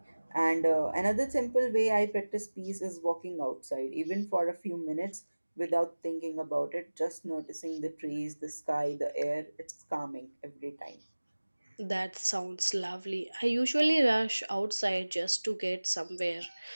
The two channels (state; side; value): inverted; both; correlation -1.00